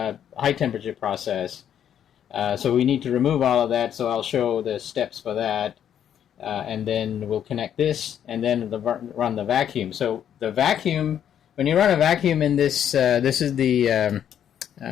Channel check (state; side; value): quieter; right; 9.5 dB